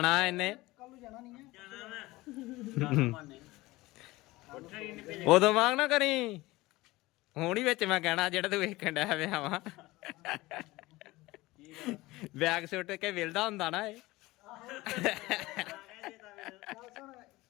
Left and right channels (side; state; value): right; quieter; 19.9 dB